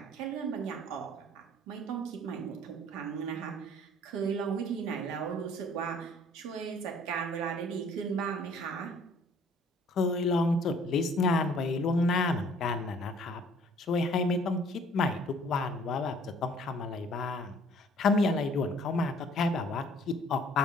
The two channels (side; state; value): both; normal; correlation 0.56